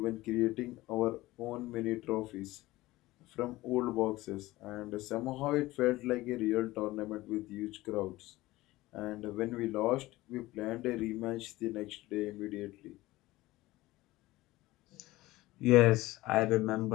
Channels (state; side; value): quieter; right; 18.4 dB